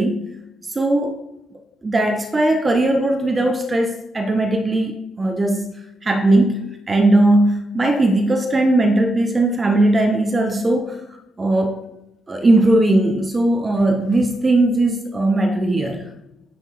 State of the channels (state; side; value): normal; both; correlation 0.85